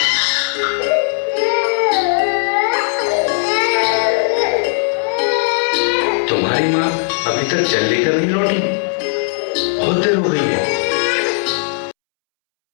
तुम्हारी माँ अभी तक जल लेकर नहीं लौटी, बहुत देर हो गई है।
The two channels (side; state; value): right; silent; 68 dB below the other